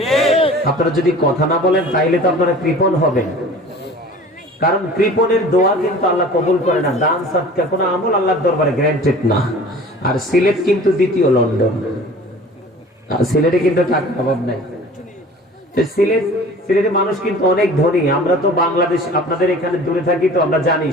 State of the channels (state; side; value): normal; both; correlation 0.44